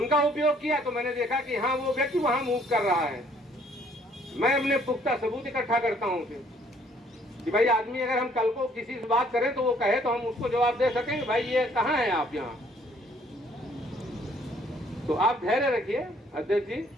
उपयोग किया तो मैंने देखा कि हाँ वो व्यक्ति वहां मूव कर रहा है। मैं अपने पुख्ता सबूत इकट्ठा करता हूँ फिर कि भाई आदमी अगर हम कल को किसी से बात करें तो वो कहे तो हम उसको जवाब दे सकेंगे भाई ये कहाँ है आप यहाँ। तो आप धैर्य रखिए अध्यक्ष जी,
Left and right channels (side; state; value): both; normal; correlation 0.62